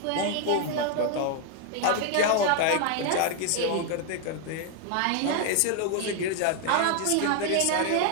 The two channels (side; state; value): both; different; correlation 0.00